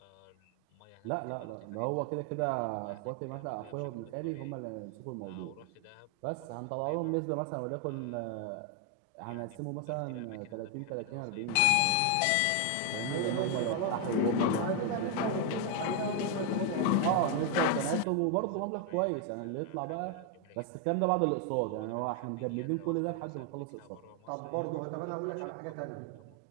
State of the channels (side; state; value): both; different; correlation 0.01